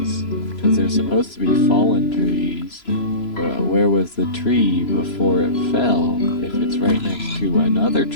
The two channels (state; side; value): late; right; 3.0 ms